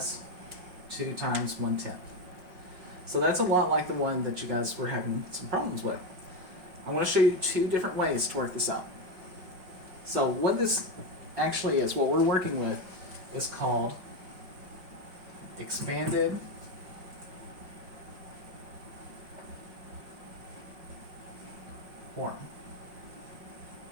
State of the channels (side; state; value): left; late; 5.5 ms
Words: 2 times 1/10. So that's a lot like the one that you guys were having some problems with. I want to show you two different ways to work this out. So what this actually is, what we're working with, is called expanded form.